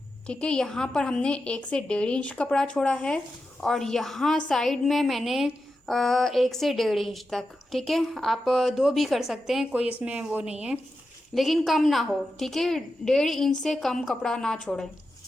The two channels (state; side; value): normal; both; correlation 0.90